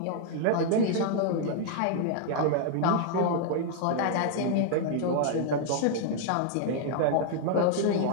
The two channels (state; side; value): different; both; correlation 0.00